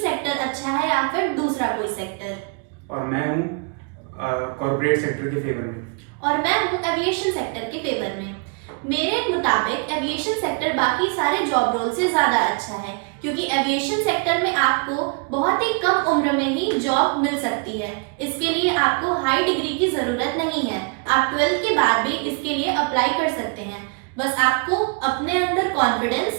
सेक्टर अच्छा है या फिर दूसरा कोई सेक्टर। और मैं हूँ कॉर्पोरेट सेक्टर के फेवर में। और मैं हूँ एविएशन सेक्टर के फेवर में। मेरे मुताबिक एविएशन सेक्टर बाकी सारे जॉब रोल से ज़्यादा अच्छा है, क्योंकि एविएशन सेक्टर में आपको बहुत ही कम उम्र में ही जॉब मिल सकती है। इसके लिए आपको हाई डिग्री की ज़रूरत नहीं है। आप 12th के बाद भी इसके लिए अप्लाई कर सकते हैं। बस आपको अपने अंदर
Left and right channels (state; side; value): quieter; left; 37.1 dB